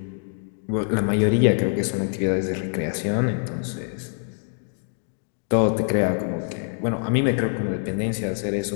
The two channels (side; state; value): right; silent; 62 dB below the other